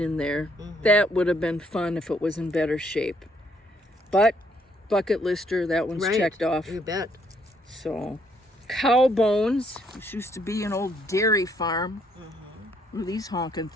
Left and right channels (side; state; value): both; normal; correlation 0.69